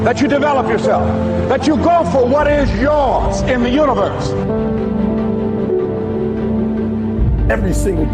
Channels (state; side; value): identical; both; correlation 1.00